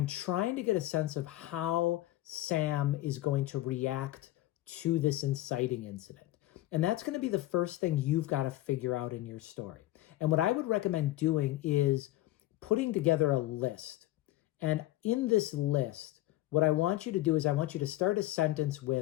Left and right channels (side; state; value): right; quieter; 16.1 dB